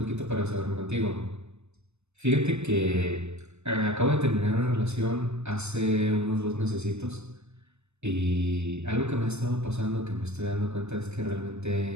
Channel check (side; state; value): left; late; 0.81 ms